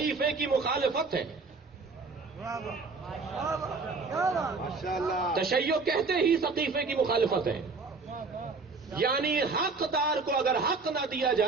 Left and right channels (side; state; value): left; quieter; 4.2 dB